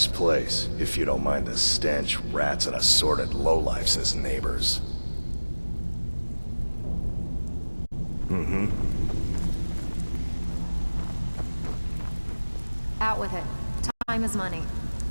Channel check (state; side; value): inverted; both; correlation -1.00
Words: place, if you don't mind the stench, rats, and assorted lowlifes as neighbors. Mm-hmm. Out with it. Time is money.